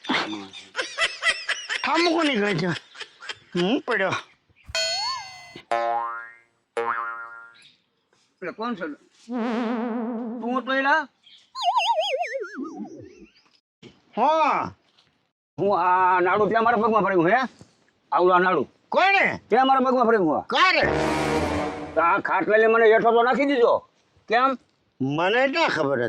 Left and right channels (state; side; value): identical; both; correlation 1.00